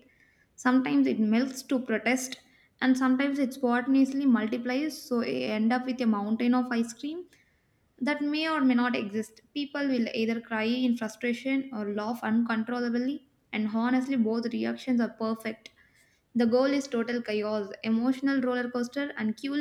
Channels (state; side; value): identical; both; correlation 1.00